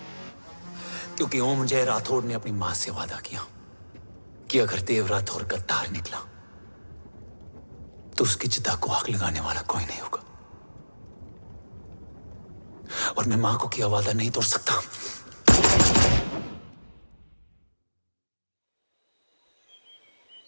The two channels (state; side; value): inverted; both; correlation -1.00